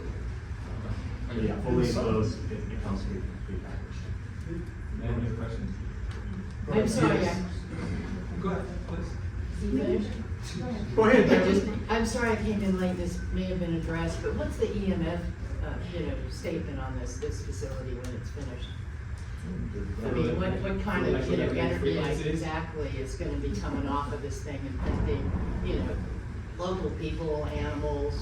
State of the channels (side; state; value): both; identical; correlation 1.00